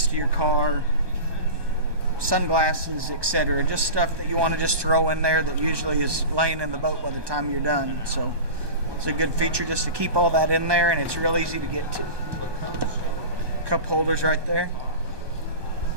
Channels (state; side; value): late; left; 1.1 ms